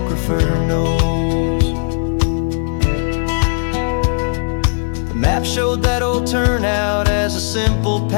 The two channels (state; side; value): silent; right; 65 dB below the other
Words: knows. The map showed that old turnout as a simple